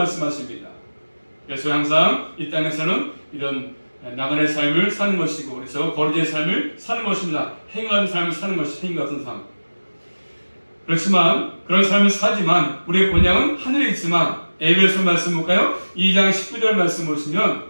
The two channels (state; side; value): inverted; both; correlation -1.00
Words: 그래서 항상 이 땅에서는 이런 나그네 삶을 사는 것이고 그래서 거리의 삶을 사는 것입니다. 행한 삶을 사는 것이 행위 같은 삶. 그렇지만 그런 삶을 사지만 우리의 본향은 하늘에 있지만 에베소 말씀 볼까요? 2장 19절 말씀 보시면